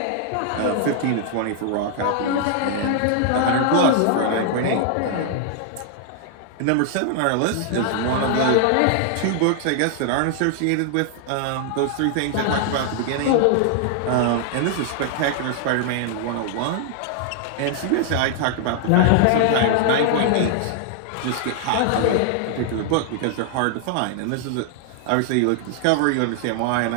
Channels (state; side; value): different; both; correlation 0.00